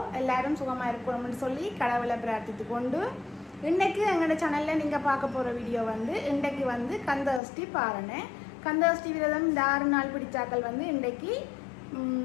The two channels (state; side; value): drops out; right; at 7.4 s